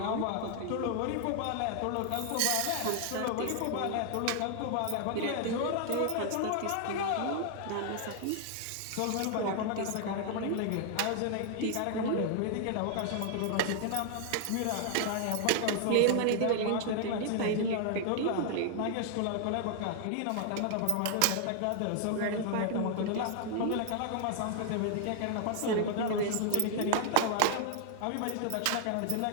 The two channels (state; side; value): different; both; correlation 0.00